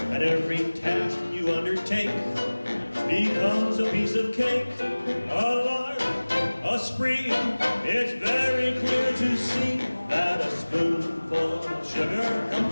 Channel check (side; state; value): both; inverted; correlation -1.00